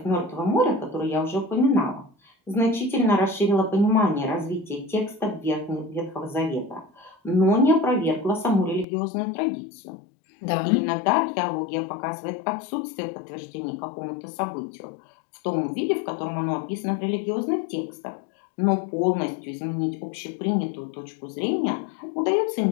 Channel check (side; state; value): right; drops out; at 8.8 s